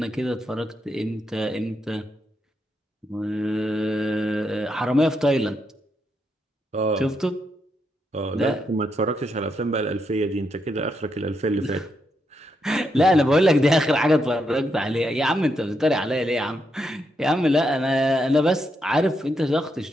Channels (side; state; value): both; normal; correlation 0.81